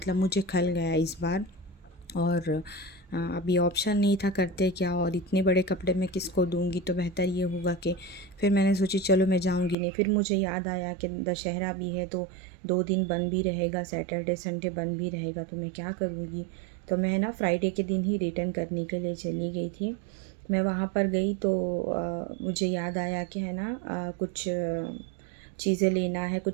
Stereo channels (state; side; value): drops out; left; at 9.8 s